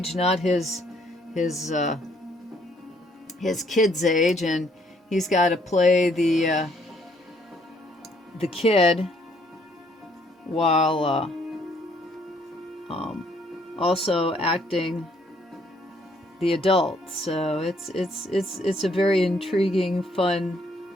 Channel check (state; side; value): normal; both; correlation 0.66